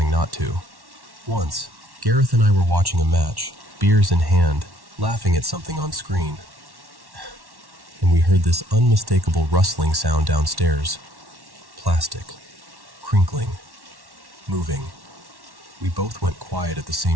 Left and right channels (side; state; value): left; late; 1.1 ms